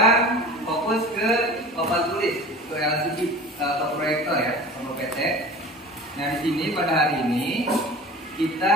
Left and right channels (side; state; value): both; normal; correlation 0.39